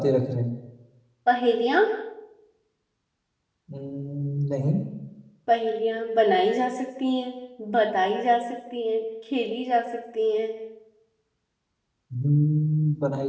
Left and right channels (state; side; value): identical; both; correlation 1.00